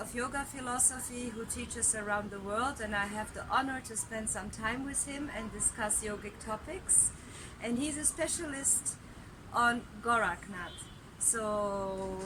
yoga philosophy who teaches around the world, and I have the honor to spend some time with him and discuss yogic topics. And he's a specialist on Gorakhnath. So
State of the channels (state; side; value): identical; both; correlation 1.00